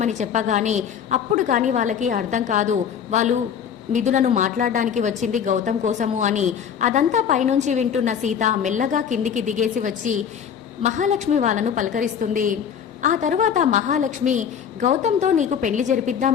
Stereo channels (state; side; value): quieter; right; 8.0 dB